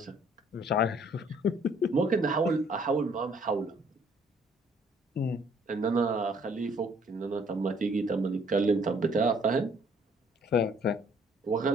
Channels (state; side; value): normal; both; correlation 0.61